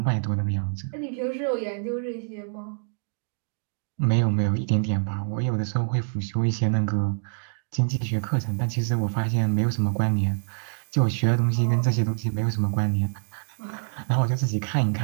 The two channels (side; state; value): left; silent; digital silence